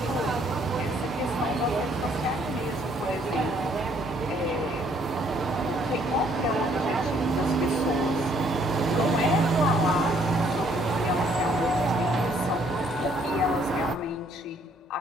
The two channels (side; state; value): both; normal; correlation 0.65